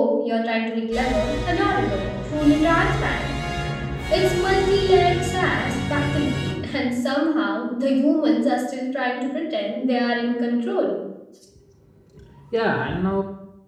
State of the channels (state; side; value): identical; both; correlation 1.00